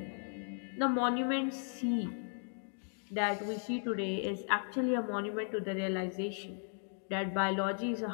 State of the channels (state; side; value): silent; right; 54 dB below the other